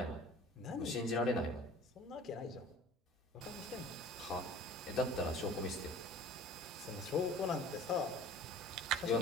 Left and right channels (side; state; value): both; normal; correlation 0.46